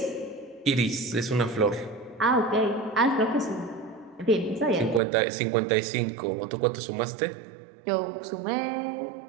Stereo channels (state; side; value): drops out; left; at 5.0 s